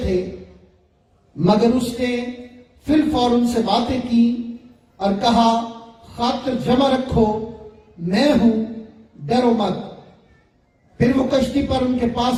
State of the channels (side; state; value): both; identical; correlation 1.00